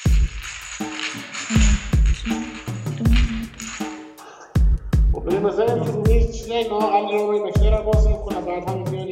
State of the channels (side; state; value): both; identical; correlation 1.00